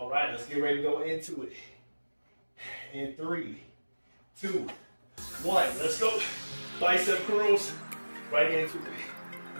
right, let's get ready to go into it. In 3, 2, 1, let's go. Bicep curls, right into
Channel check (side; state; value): both; inverted; correlation -1.00